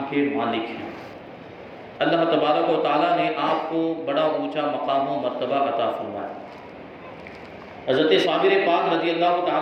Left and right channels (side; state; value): both; identical; correlation 1.00